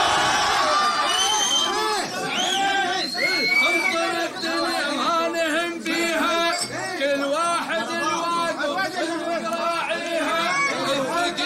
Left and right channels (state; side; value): identical; both; correlation 1.00